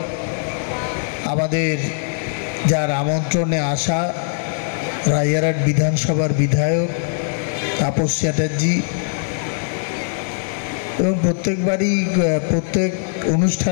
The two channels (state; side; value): silent; right; digital silence